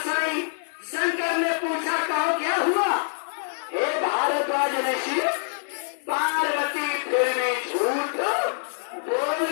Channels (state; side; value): silent; right; digital silence